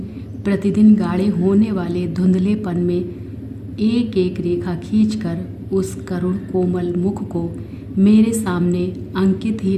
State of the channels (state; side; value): identical; both; correlation 1.00